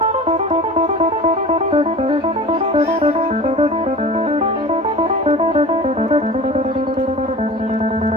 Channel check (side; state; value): both; normal; correlation 0.38